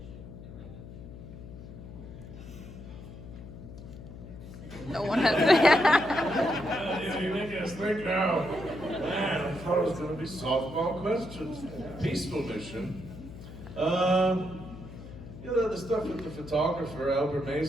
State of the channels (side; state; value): left; noise; hum, 13 dB below the sound